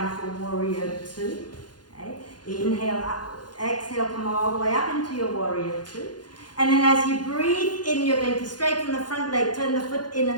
for warrior two. Okay. Inhale up, exhale, come all the way up into your warrior two. And then as you breathe in, you're going to straighten the front leg, turn the foot in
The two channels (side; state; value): right; late; 0.70 ms